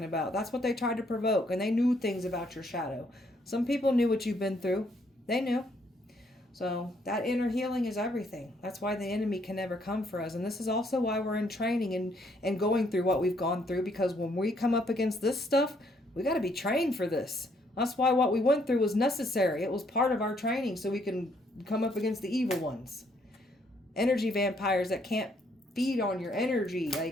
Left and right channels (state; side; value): normal; both; correlation 0.69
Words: about. That's what they tried to provoke. And they knew things about your shadow. Some people knew what you've been through. They knew. So that inner healing is everything. That's why the enemy can never come for us. And this is also why we're in training and going through what we've gone through. Because when we come up against this stuff, we got to be trained for this. That's why what we went through was necessary. It was part of our training so we can come up against the evil ones. Energy vampires that can't feed on your energy.